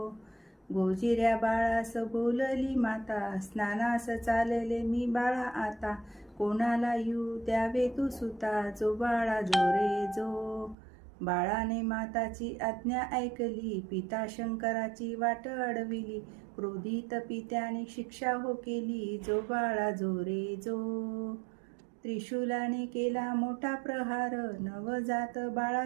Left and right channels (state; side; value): drops out; left; at 10.8 s